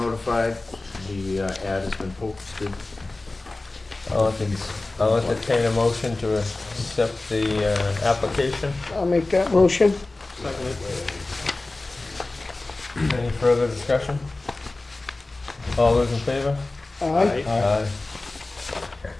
the ad has been posted, I'll entertain a motion to accept the application. I'll make that motion. Any further discussion? All those in favor? Aye. Aye.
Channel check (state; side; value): quieter; right; 3.1 dB